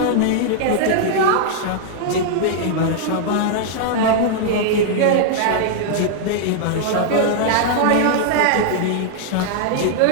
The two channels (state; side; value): different; both; correlation -0.01